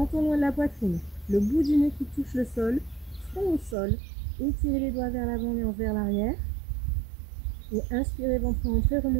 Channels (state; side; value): drops out; left; at 3.8 s